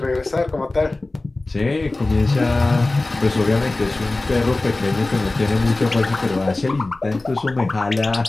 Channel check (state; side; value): quieter; right; 3.0 dB